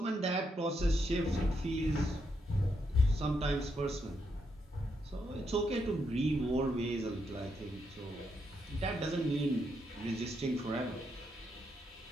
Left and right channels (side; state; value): both; normal; correlation 0.80